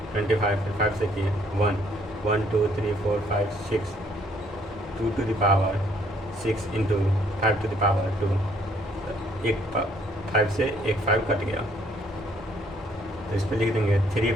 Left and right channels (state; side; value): normal; both; correlation 0.65